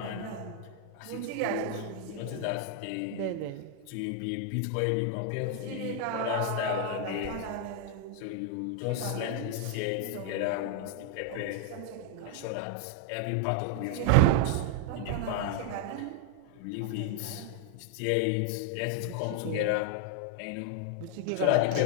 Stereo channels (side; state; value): both; different; correlation 0.00